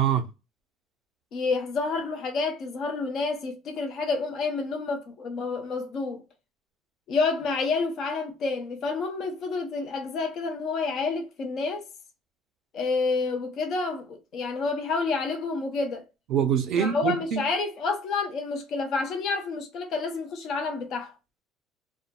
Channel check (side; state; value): both; normal; correlation 0.53